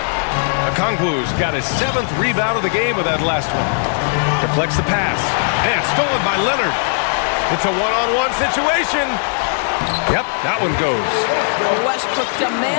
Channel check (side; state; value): right; silent; digital silence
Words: Okongwu's got his 7th rebound of the game with that last one. Deflects the pass. And stolen by Leonard. It's a one-on-one situation. Yep, that one goes. Westbrook